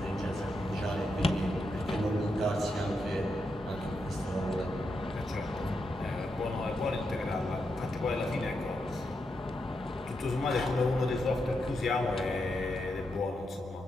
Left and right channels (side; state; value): both; normal; correlation 0.84